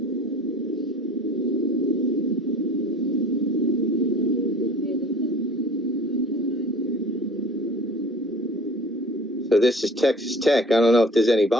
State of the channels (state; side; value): normal; both; correlation 0.46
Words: So this is Texas Tech. I don't know if there's any